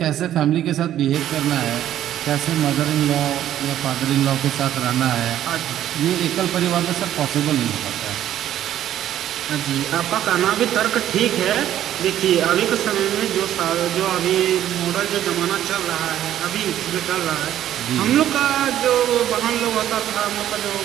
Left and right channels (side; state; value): left; quieter; 11.8 dB